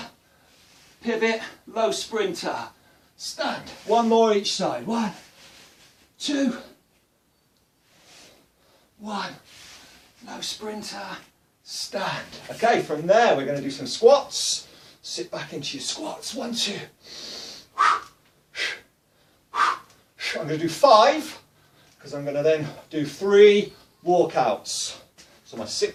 pivot, low sprinter, stand. One more each side, 1, 2, 1, low sprinter, stand. Okay, from there we're going to do some squats. Sit back into your squats, 1, 2. I'm going to do 5. Because I'm going to then do 3 walkouts. So my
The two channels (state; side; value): identical; both; correlation 1.00